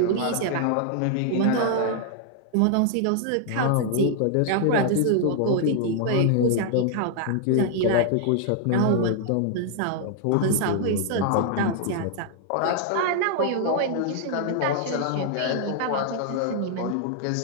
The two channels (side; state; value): both; different; correlation 0.00